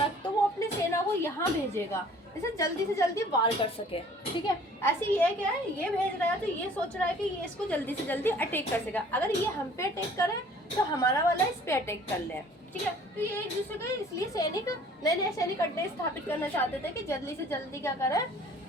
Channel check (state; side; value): normal; both; correlation 0.52